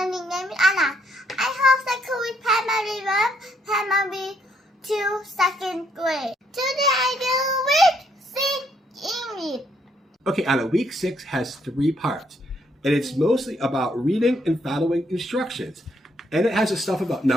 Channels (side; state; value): both; normal; correlation 0.72